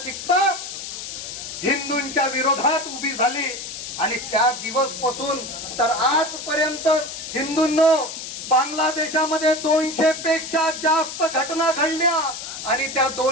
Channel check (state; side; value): noise; left; hiss, 8 dB below the sound